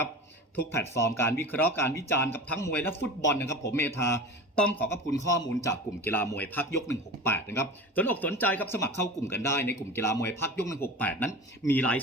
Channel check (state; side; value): normal; both; correlation 0.33